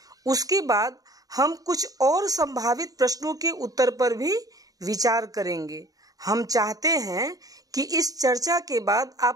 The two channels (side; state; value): left; late; 0.18 ms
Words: उसके बाद हम कुछ और संभावित प्रश्नों के उत्तर पर भी विचार करेंगे। हम चाहते हैं कि इस चर्चा के बाद